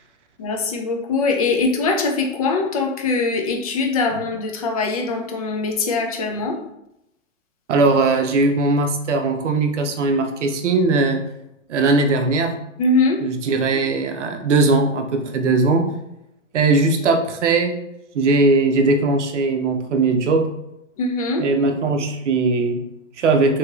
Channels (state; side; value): normal; both; correlation 0.13